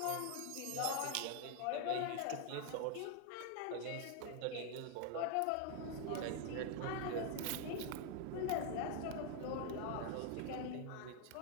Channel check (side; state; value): both; different; correlation 0.01